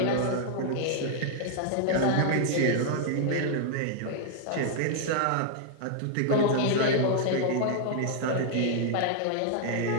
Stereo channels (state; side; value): different; both; correlation 0.00